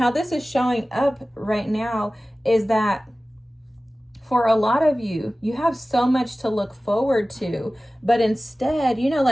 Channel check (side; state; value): both; normal; correlation 0.97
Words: this is showing up right now is that for a lot of you, you have so much to look forward to, but instead, you know,